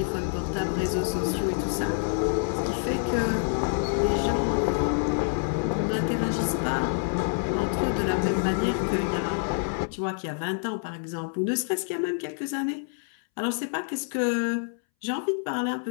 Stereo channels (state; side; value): silent; right; 60 dB below the other